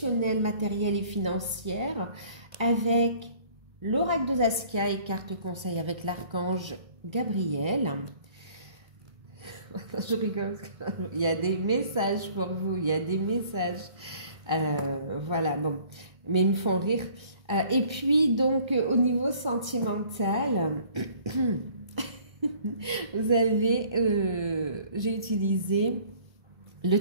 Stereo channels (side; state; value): left; late; 1.3 ms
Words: matérielle et financière avec l'oracle de Saskia et carte conseil avec l'archange Gabriel. Je rigole, il y a des messages pour vous, il y a des messages. Voilà, bon, mais ils me font rire. Et puis donc au niveau sentimental, vous avez, j'ai utilisé le